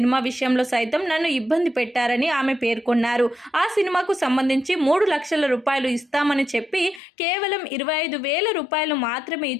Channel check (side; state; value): right; drops out; at 7.0 s